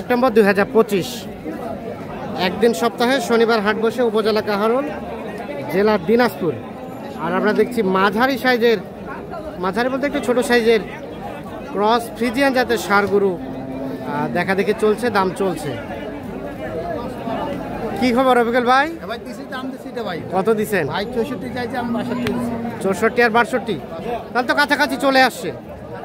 2025। একদিন সপ্তাহে শনিবার হাট বসে উপজেলা কাহারোল, জেলা দিনাজপুর। আর আমরা দেখছি মাঝারি সাইজের, মাঝারি বলতে একটু ছোট সাইজের ক্রস ফ্রিজিয়ান জাতের ষাঁড় গরু দেখা দেখে চলছে, দাম চলছে। কি খবর রফিকুল ভাই? কত দিচ্ছেন? 64 আর 62, তাহলে তো কাছাকাছি চলে আসছে।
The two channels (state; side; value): identical; both; correlation 1.00